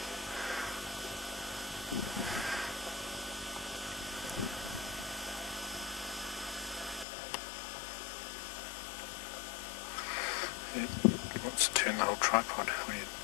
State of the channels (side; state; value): right; drops out; at 7.1 s